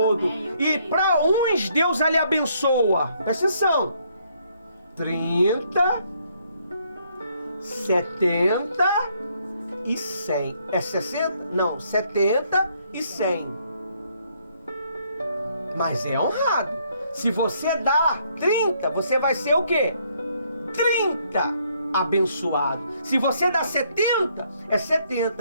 E para uns, Deus ali abençoa. Presta atenção. 30, 70 e 100. É 60? Não, 70 e 100. Mas é honrado. Se você dá 30, você vai ser o quê? 30 abençoado. Se você dá 70, é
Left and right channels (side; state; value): both; inverted; correlation -0.69